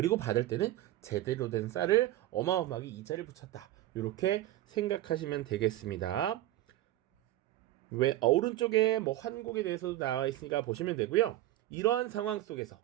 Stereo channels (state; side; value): quieter; left; 14.7 dB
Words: 받을 때는 제대로 된 쌀을 어마어마하게 이자를 붙였다, 이렇게 생각하시면 되겠습니다. 왜 오른쪽에 뭐 환곡에 대해서도 나와 있으니까 보시면 되고요. 이러한 상황 속에서